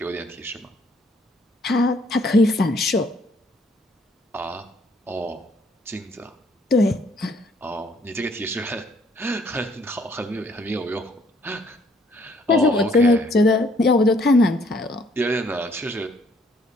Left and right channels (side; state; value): both; normal; correlation 0.64